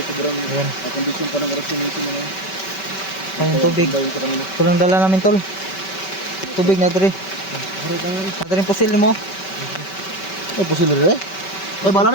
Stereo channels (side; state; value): right; late; 5.2 ms